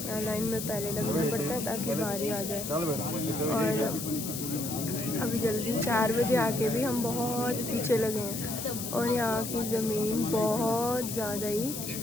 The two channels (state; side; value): noise; left; hiss, 6 dB below the sound